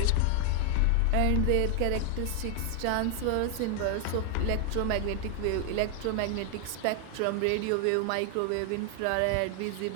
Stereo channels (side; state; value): both; different; correlation 0.00